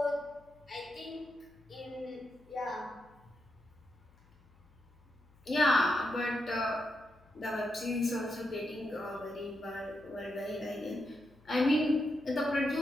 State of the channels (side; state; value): left; noise; hum, 28 dB below the sound